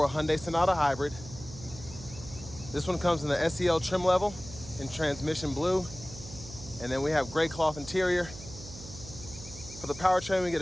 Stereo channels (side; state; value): right; noise; hum, 15 dB below the sound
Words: Hyundai Sonata Hybrid. This one comes in the SEL trim level in transmission blue. And then we have gray cloth interior. For the powertrain, we get